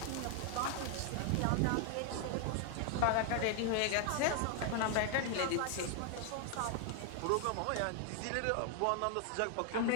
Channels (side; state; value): both; different; correlation 0.00